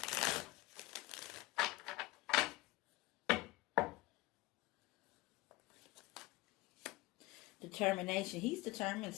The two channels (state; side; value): quieter; right; 21.0 dB